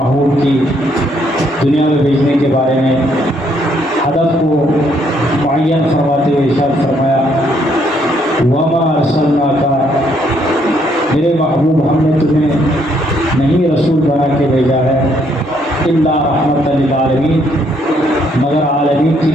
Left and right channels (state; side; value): normal; both; correlation 0.70